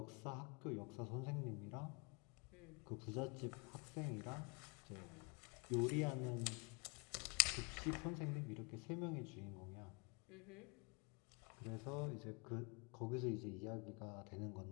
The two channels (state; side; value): quieter; right; 33.2 dB